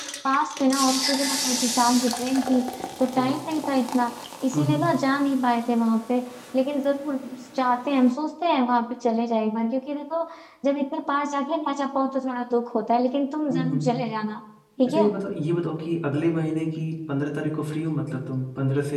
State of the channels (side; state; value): both; identical; correlation 1.00